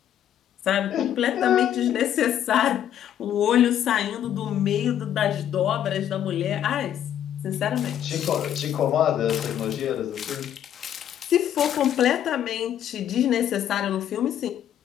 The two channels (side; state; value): right; quieter; 10.4 dB